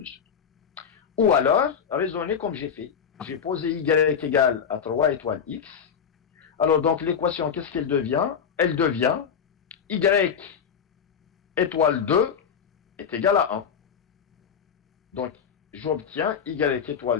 Ou alors, raisonnez comme j'ai fait. J'ai posé y égale à 3 étoile x. Alors, donc, l'équation, qu'est-ce qu'elle devient? Elle devient y étoile 2 est égal à 1. Donc, j'obtiens y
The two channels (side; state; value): right; quieter; 7.2 dB